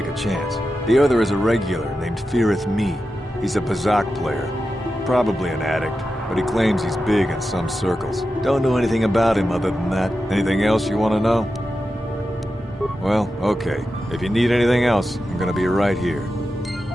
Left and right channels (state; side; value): normal; both; correlation 0.91